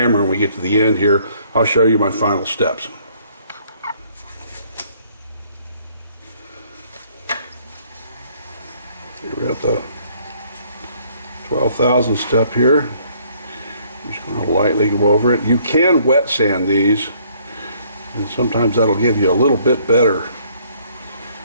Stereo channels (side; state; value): both; inverted; correlation -0.63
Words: When we get to the end here, I'll show you my final steps. We're at the 12,000 step here. I'm just going to lightly go over it. You can wet sand these, and sometimes that'll give you a little bit better